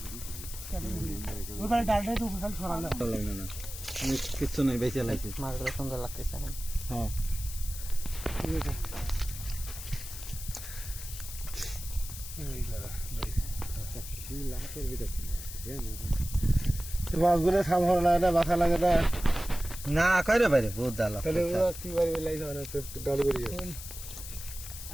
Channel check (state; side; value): noise; left; hiss, 11 dB below the sound